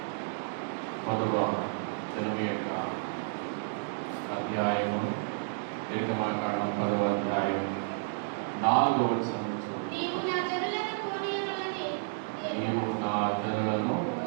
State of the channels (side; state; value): left; silent; digital silence